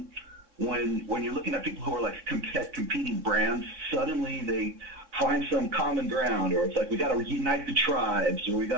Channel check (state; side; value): late; left; 3.6 ms